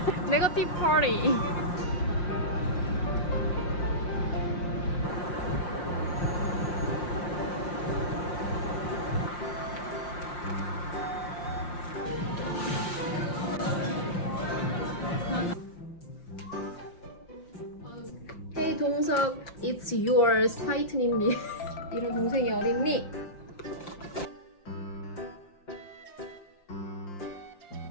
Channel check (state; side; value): late; right; 5.7 ms